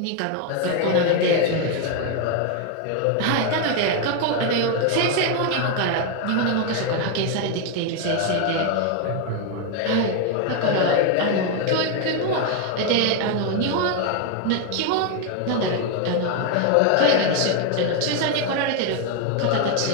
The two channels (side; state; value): both; different; correlation 0.01